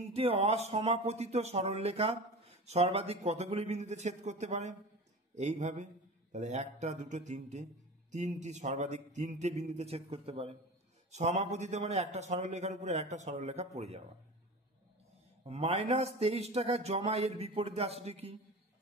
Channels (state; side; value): normal; both; correlation 0.32